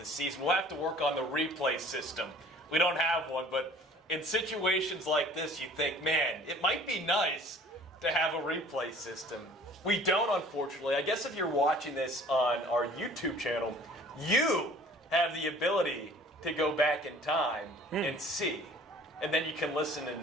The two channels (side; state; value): both; normal; correlation 0.50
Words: season. We'll have to work on the replay system. We don't have one, but in situations like this, you think, man, it might be nice to have a replay system. We don't, unfortunately. I guess if you're watching this on our YouTube channel, you have the ability to go back in time and see. And then you can listen